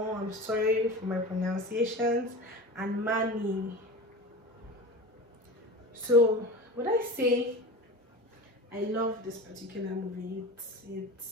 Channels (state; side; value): normal; both; correlation 0.31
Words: I'm sorry for my pronunciations, and Mani. So would I say I love this particular movie? It's